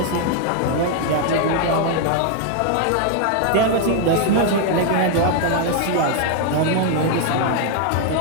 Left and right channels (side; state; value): both; different; correlation 0.00